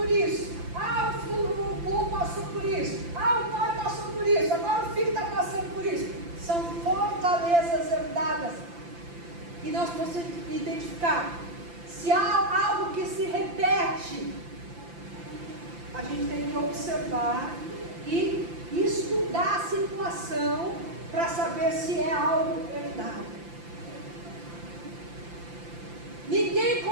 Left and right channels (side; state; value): left; late; 5.8 ms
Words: isso, ah, o vô passou por isso, ah, o pai passou por isso, agora o filho está passando por isso. São fortalezas herdadas. E nós precisamos identificar se há algo que se repete. A gente tem que observar e estudar a situação para saber se é algo herdado. Ninguém